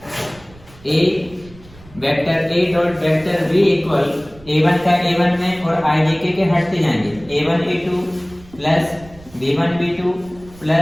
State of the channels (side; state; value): right; noise; rumble, 23 dB below the sound